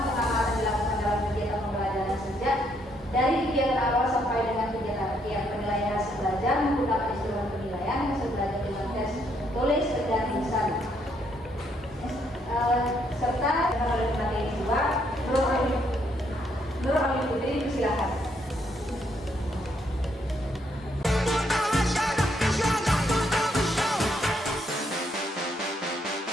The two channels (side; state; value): both; normal; correlation 0.72